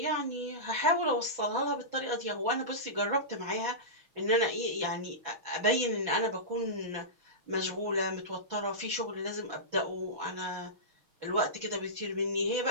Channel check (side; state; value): left; late; 6.3 ms